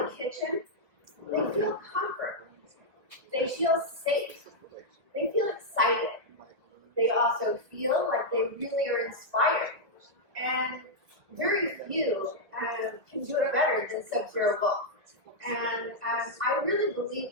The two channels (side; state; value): left; late; 1.9 ms